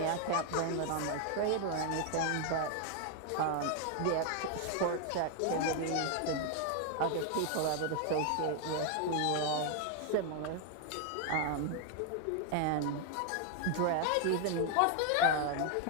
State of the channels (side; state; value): both; different; correlation 0.01